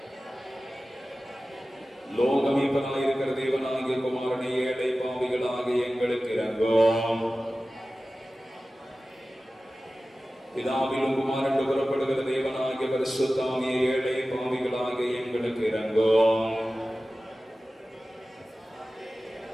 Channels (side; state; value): both; normal; correlation 0.96